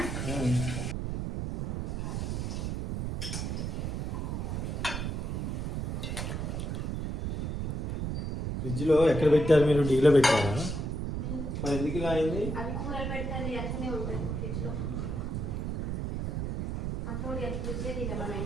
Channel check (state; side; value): noise; right; rumble, 2 dB below the sound